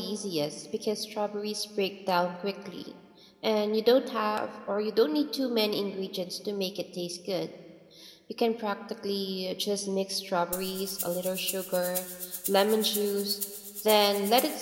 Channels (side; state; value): both; identical; correlation 1.00